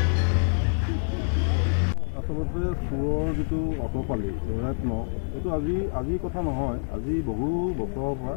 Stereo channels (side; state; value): right; silent; 60 dB below the other